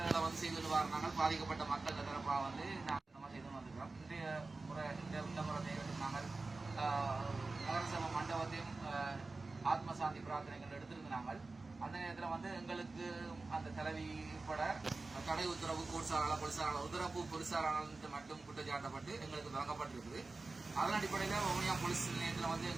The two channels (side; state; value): left; quieter; 3.5 dB